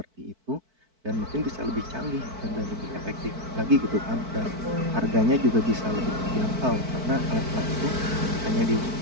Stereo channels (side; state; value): left; late; 4.5 ms